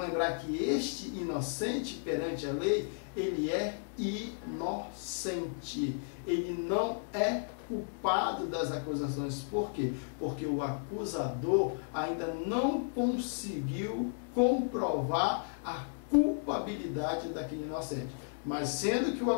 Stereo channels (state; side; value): silent; right; digital silence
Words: que este inocente perante a lei, ele é inocente. Ele não é culpado das acusações. Por quê? Porque o acusador ainda não conseguiu comprovar a culpabilidade daquele inocente. Mas sendo que o